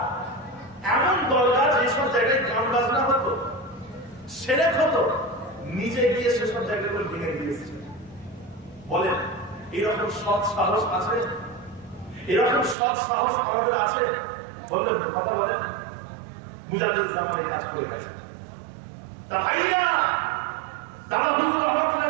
এমন দরগা যেসব জায়গায় গান বাজনা হতো, সেরেক হতো, নিজে গিয়ে সেসব জায়গাগুলো ভেঙে দিয়েছিলেন। বলেন, এরকম সৎ সাহস আছে? এরকম সৎ সাহস আমাদের আছে? বলবেন, কথা বলেন। মুজাদ্দিদ জামানে কাজ করে গেছে। তা ভাইয়া, দাদা হুজুর রহমাতুল্লাহ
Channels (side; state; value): left; drops out; at 12.8 s